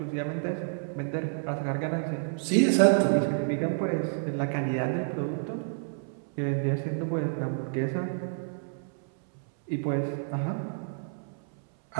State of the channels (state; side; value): silent; left; 58 dB below the other